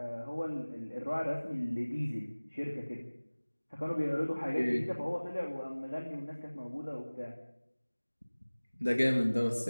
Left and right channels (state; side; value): inverted; both; correlation -1.00